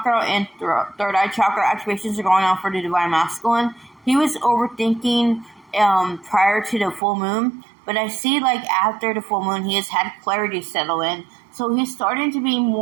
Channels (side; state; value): left; drops out; at 7.0 s